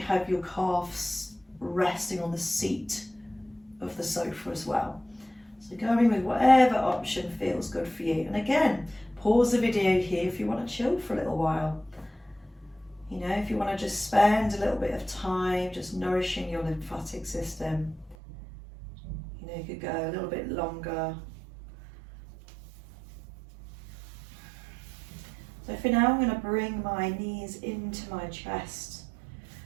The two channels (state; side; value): drops out; left; at 18.2 s